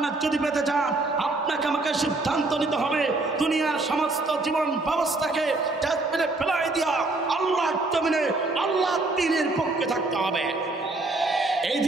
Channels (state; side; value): quieter; left; 3.1 dB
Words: যদি পেতে চান, আপনাকে আমাকে সিদ্ধান্ত নিতে হবে দুনিয়ার সমস্ত জীবন ব্যবস্থাকে ডাস্টবিনে ফেলাই দিয়া আল্লাহর জমিনে আল্লাহর দ্বীনের পক্ষে থাকতে হবে। এই